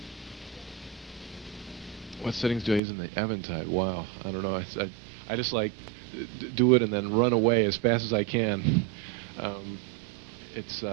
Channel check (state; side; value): drops out; left; at 2.8 s